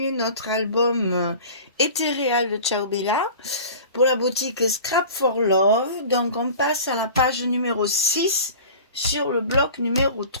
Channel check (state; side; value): inverted; both; correlation -0.40